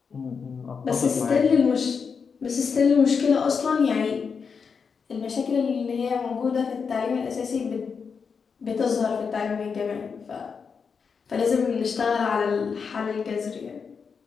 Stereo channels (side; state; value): right; quieter; 5.8 dB